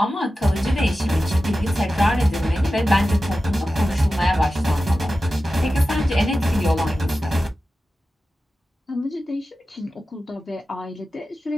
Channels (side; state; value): both; normal; correlation 0.94